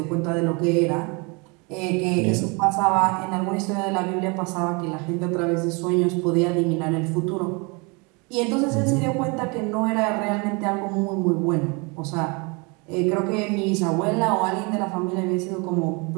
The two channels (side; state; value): left; quieter; 30.1 dB